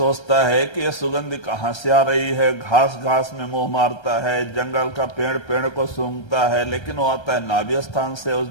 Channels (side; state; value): right; late; 1.3 ms